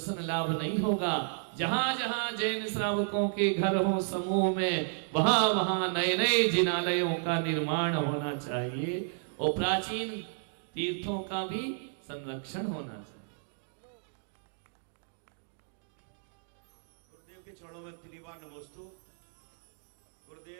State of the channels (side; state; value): left; silent; digital silence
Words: लाभ नहीं होगा। जहाँ जहाँ जैन श्रावकों के घर हो समूह में, वहाँ वहाँ नए नए जिनालयों का निर्माण होना चाहिए और प्राचीन तीर्थों का भी संरक्षण होना चाहिए। गुरुदेव के चरणों में 3 बार नमोस्तु।